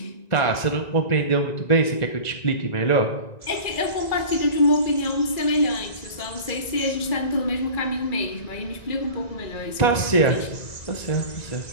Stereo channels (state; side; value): late; right; 1.9 ms